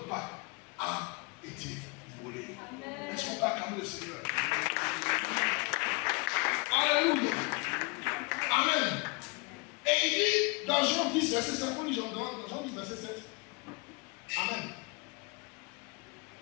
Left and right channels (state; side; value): quieter; right; 27.7 dB